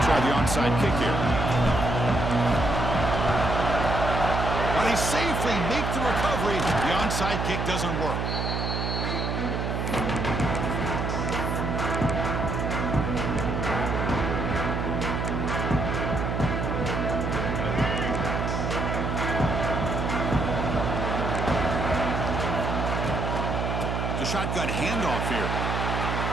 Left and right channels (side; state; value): right; noise; hum, 1 dB below the sound